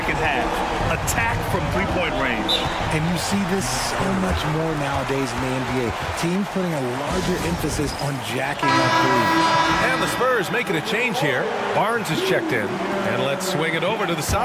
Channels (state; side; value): identical; both; correlation 1.00